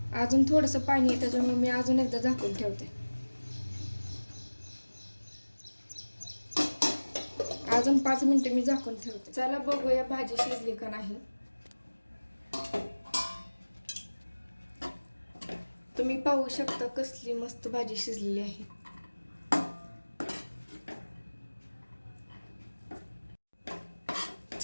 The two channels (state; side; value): inverted; both; correlation -1.00